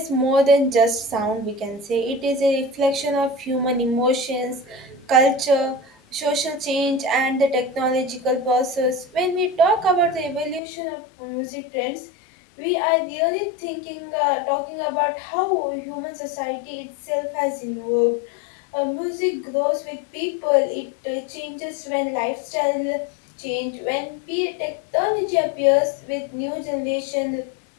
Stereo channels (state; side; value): drops out; right; at 10.6 s